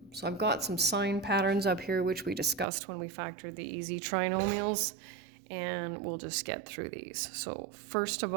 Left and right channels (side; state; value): left; drops out; at 2.7 s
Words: So I've got some sign patterns up here, which we discussed when we factored the easy trinomials, and we'll just get through these. So first of